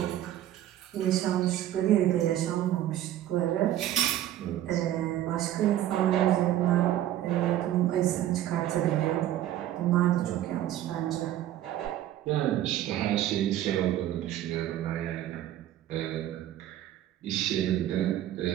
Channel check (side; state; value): left; quieter; 12.6 dB